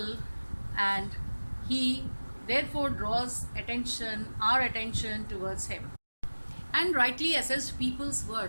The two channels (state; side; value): inverted; both; correlation -1.00